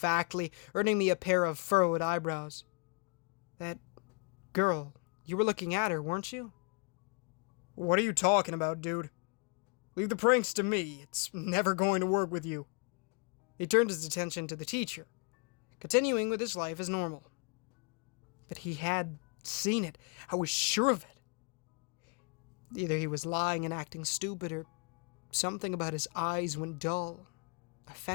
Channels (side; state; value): right; quieter; 34.4 dB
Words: earning me a pair of furrowed eyebrows. That girl, you were looking at her, weren't you? What are you talking about, dude? Leave the pranks to me. It's never going to work with you. He turned his attention to the teacher, continuing with his life as normal. But he had seen it. I was sure of it. Either he was lying and acting stupid, or something about his eyes when dull